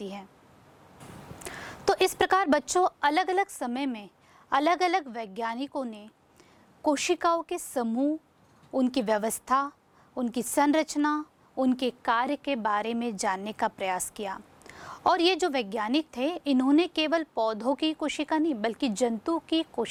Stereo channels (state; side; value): identical; both; correlation 1.00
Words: है। तो इस प्रकार बच्चों अलग अलग समय में अलग अलग वैज्ञानिकों ने कोशिकाओं के समूह, उनकी व्यवस्था, उनकी संरचना, उनके कार्य के बारे में जानने का प्रयास किया। और ये जो वैज्ञानिक थे इन्होंने केवल पौधों की कोशिका नहीं बल्कि जंतु की